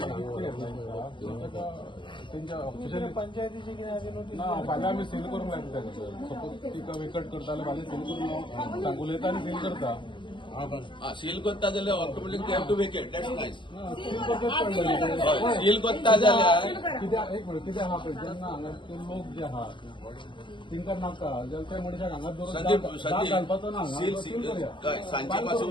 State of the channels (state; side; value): late; right; 0.24 ms